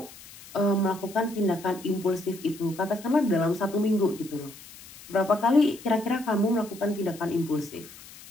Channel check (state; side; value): noise; left; hiss, 19 dB below the sound